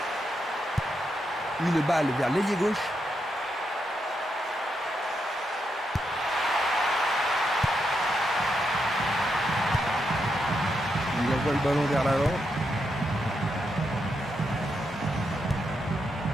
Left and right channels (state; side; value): normal; both; correlation 0.82